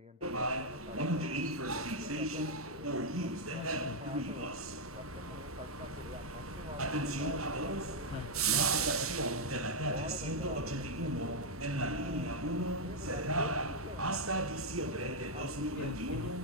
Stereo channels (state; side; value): normal; both; correlation -0.01